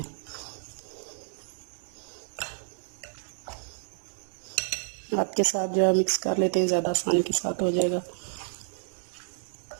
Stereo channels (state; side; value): silent; left; 55 dB below the other